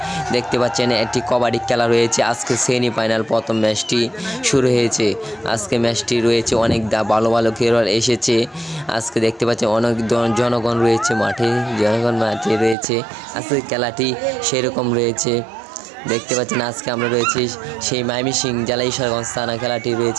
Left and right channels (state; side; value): drops out; left; at 12.8 s